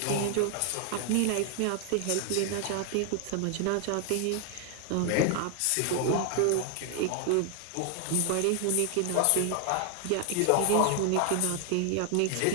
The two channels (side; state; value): both; different; correlation 0.00